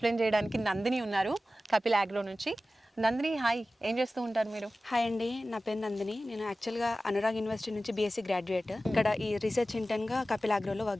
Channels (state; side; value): normal; both; correlation 0.95